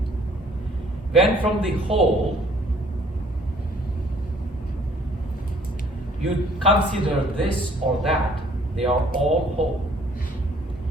When from the whole you consider this or that, they are all whole.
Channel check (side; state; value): both; normal; correlation 0.59